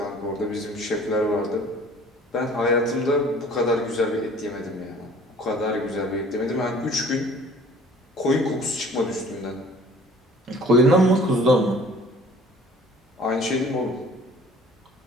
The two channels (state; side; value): normal; both; correlation 0.50